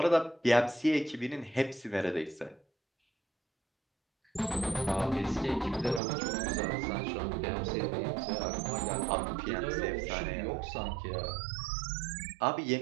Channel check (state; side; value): drops out; left; at 6.0 s